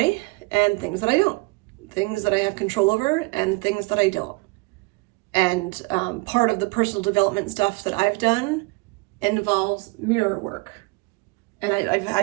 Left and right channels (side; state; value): left; quieter; 26.8 dB